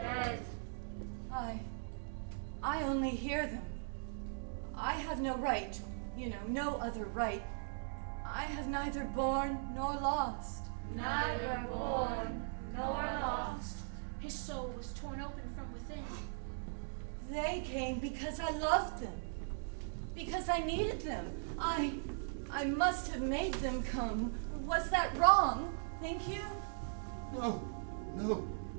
I only hear them. I have no right, no other right. I have neither born nor lost. Neither born nor lost. His soul was torn open from within. They came because I loved them. Because I needed them. I must have made them come. Was that wrong? Think you? No.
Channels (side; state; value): left; silent; digital silence